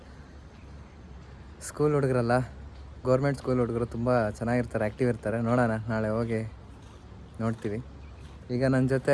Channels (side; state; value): both; identical; correlation 1.00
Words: ಸ್ಕೂಲ್ ಹುಡುಗರಲ್ಲ, ಗೌರ್ಮೆಂಟ್ ಸ್ಕೂಲ್ ಹುಡುಗರು ತುಂಬ ಚೆನ್ನಾಗಿರ್ತಾರೆ, ಆ್ಯಕ್ಟಿವ್ ಇರ್ತಾರೆ. ನೋಡೋಣ, ನಾಳೆ ಹೋಗಿ ನೋಡ್ತೀವಿ. ಈಗ ನನ್ನ ಜೊತೆ